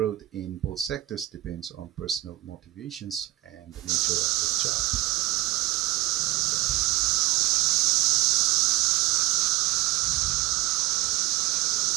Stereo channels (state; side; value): quieter; left; 18.0 dB